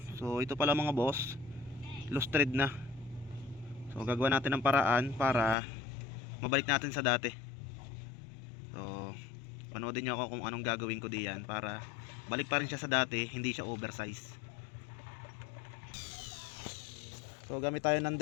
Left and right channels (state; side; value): drops out; right; at 5.6 s